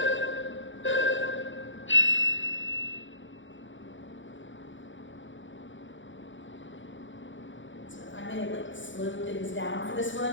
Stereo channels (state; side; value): late; right; 0.55 ms